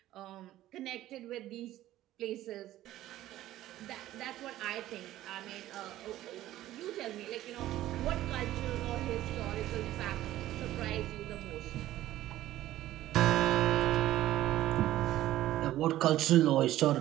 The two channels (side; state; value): left; quieter; 14.4 dB